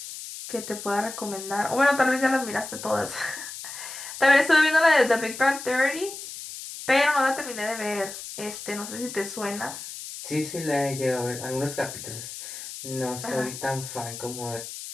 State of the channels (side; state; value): left; noise; hiss, 10 dB below the sound